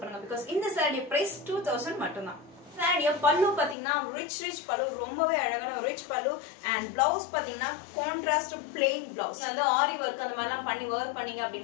பண்ணுங்க because இந்த சாரி பிரைஸ் 2000 மட்டும் தான். சாரியா பல்லு பாத்தீங்கன்னா ரிச் பல்லு, ரொம்பவே அழகான ரிச் பல்லு. and blouse பாத்தீங்கன்னா கான்ட்ராஸ்ட் பிளெயின் blouse. அந்த ஆரி வர்க் அந்த மாதிரிலாம் பண்ணி வேர் பண்ணீங்க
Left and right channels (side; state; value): right; drops out; at 3.8 s